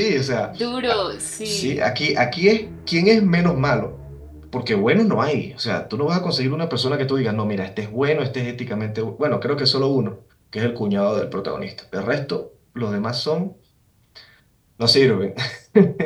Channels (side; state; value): both; identical; correlation 1.00